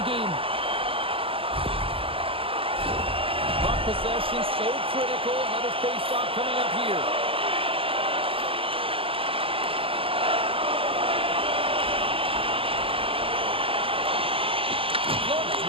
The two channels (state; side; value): late; left; 0.26 ms